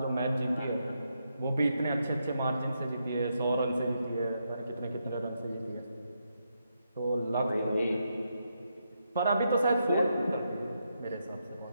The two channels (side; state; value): both; inverted; correlation -0.82